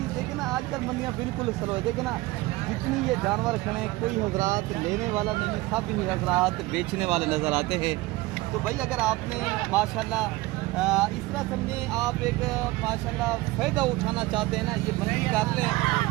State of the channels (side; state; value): left; quieter; 20.1 dB